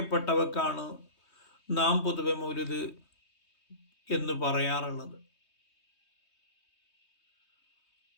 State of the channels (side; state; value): right; late; 3.2 ms